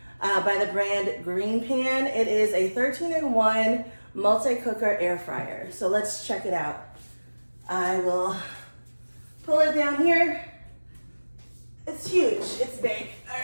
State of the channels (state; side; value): inverted; both; correlation -1.00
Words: by the brand Green Pan. It is a 13-in-1 multi-cooker air fryer. So let's check it out. I will pull it down here. It's huge, it's big. All